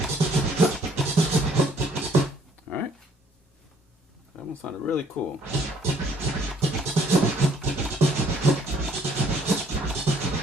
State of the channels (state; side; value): normal; both; correlation 0.62